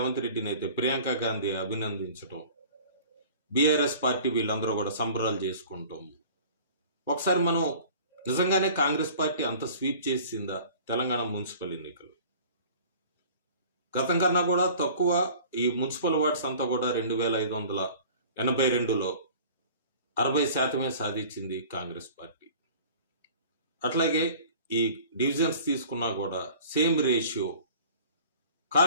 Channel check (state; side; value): inverted; both; correlation -0.46